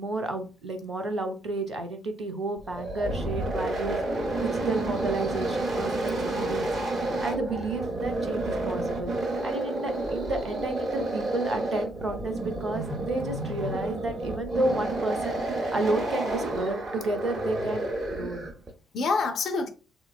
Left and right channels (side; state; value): both; normal; correlation 0.72